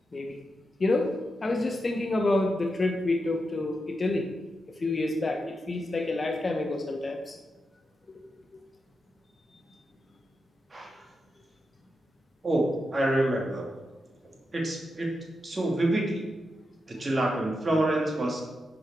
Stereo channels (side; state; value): both; normal; correlation 0.87